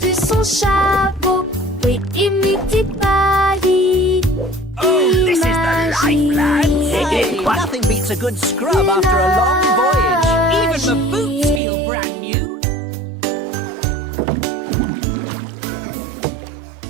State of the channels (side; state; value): left; drops out; at 11.6 s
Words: son chapeau. Oui, imite Paris. Hey, nothing beats a good scrub after a long voyage. Even the boots feel brand new.